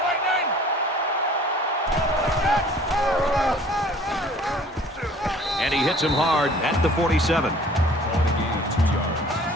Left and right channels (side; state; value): both; normal; correlation 0.51